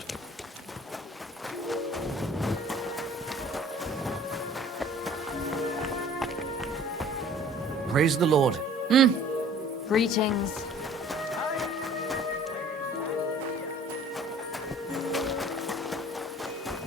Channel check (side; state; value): both; normal; correlation 0.50